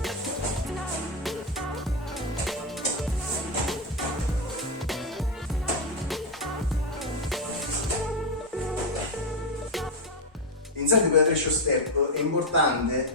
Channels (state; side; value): normal; both; correlation 0.05